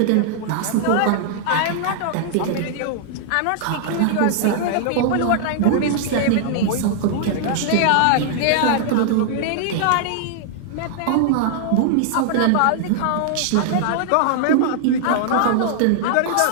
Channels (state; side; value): different; both; correlation -0.01